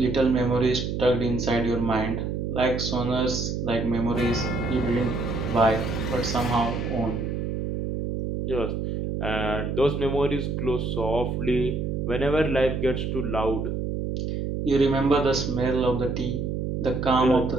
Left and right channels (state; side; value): noise; right; hum, 2 dB below the sound